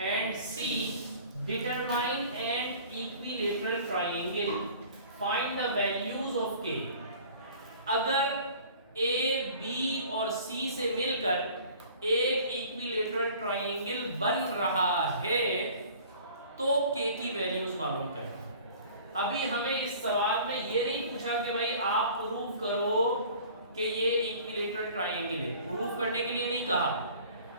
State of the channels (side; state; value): both; inverted; correlation -0.47